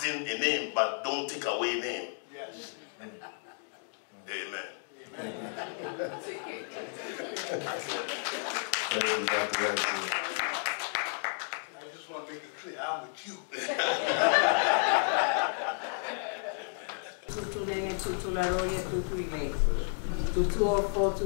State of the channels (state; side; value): silent; right; 56 dB below the other